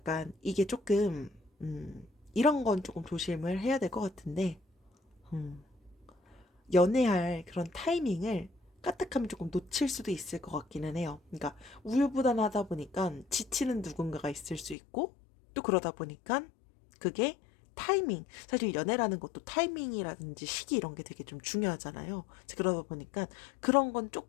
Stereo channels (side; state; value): right; drops out; at 14.8 s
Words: 이게 조금 이런 건 조금 조심을 해야 될 것 같은데, 음, 연애할 그런 타이밍을 까딱하면 조금 놓칠 수도 있을 것 같기는 해요. 그러니까 우유부단하다 보니까 지치는 누군가가 있을 수 있고, 또 그러다 보니까 그게 타이밍, 사실 연애라는 것도 타이밍이라든지 시기 이런 게 되게 좀 중요하잖아요. 그러다 보니까 그런 건